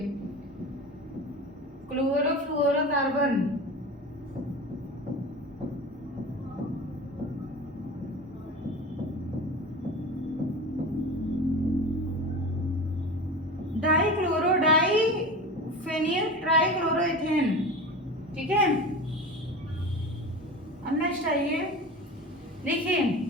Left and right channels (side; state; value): both; normal; correlation 0.31